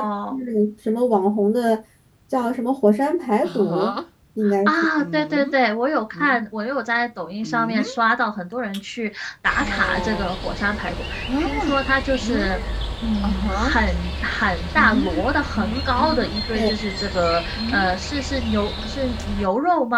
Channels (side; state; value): both; identical; correlation 1.00